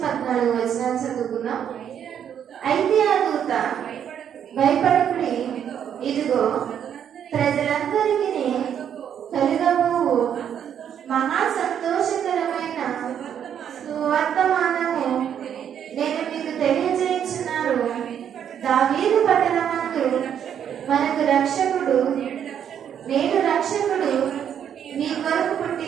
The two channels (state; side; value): quieter; left; 9.0 dB